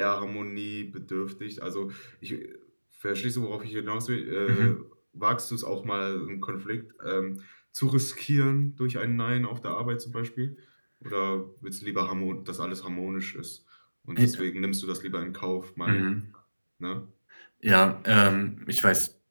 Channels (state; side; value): inverted; both; correlation -1.00